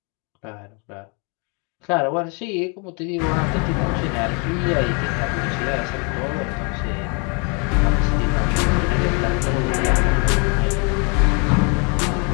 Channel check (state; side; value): quieter; right; 34.3 dB